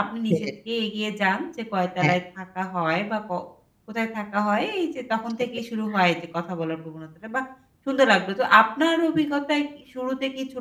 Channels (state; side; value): identical; both; correlation 1.00